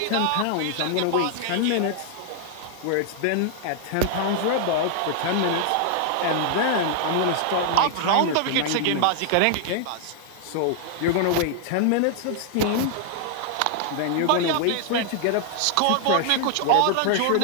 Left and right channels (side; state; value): both; different; correlation 0.00